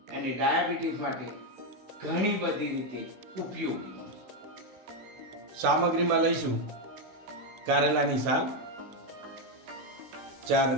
અને ડાયાબિટીસ માટે ઘણી બધી રીતે ઉપયોગી. સામગ્રીમાં લઈશું કારેલાની સાલ, 4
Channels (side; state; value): left; late; 16 ms